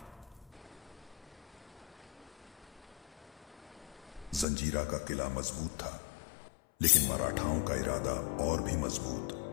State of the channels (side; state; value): right; drops out; at 4.5 s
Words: जंजीरा का किला मजबूत था, लेकिन मराठाओं का इरादा और भी